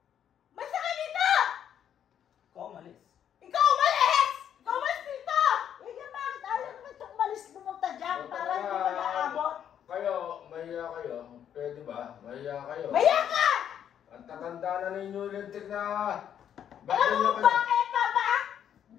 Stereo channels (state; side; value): quieter; right; 9.4 dB